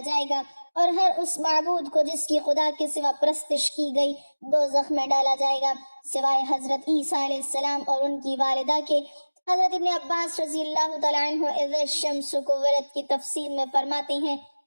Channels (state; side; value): inverted; both; correlation -1.00